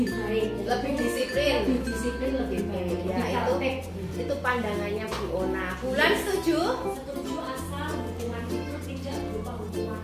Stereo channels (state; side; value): identical; both; correlation 1.00